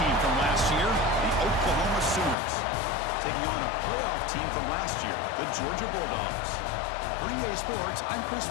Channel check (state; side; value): drops out; right; at 2.4 s